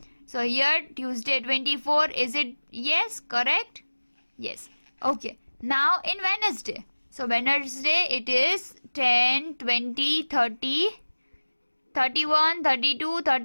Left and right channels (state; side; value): inverted; both; correlation -1.00